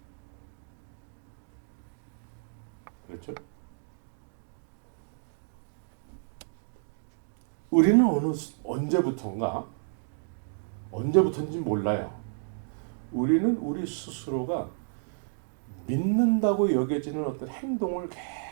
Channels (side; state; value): left; silent; digital silence